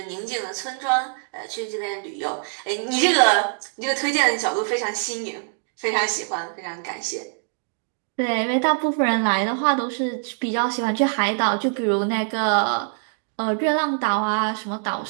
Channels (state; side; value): silent; left; digital silence